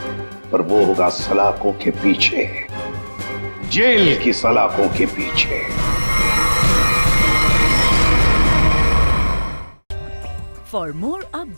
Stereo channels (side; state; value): both; inverted; correlation -1.00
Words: पर वो होगा सलाखों के पीछे, जेल की सलाखों के पीछे। For more